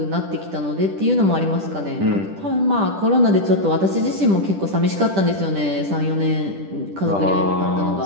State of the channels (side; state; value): left; late; 10 ms